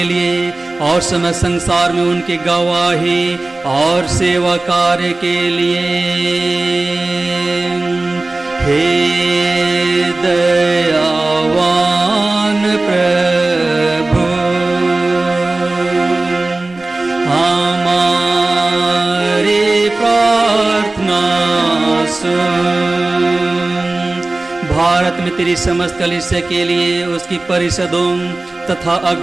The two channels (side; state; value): left; quieter; 3.0 dB